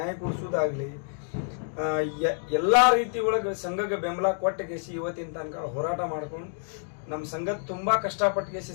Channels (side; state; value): right; silent; 56 dB below the other